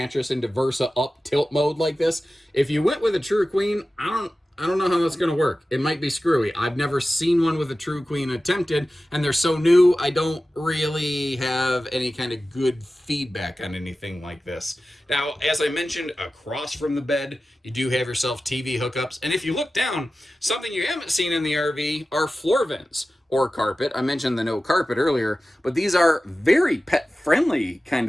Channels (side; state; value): both; normal; correlation 0.95